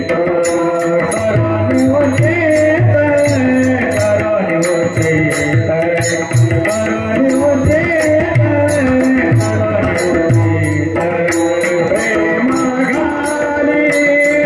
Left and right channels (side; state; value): both; identical; correlation 1.00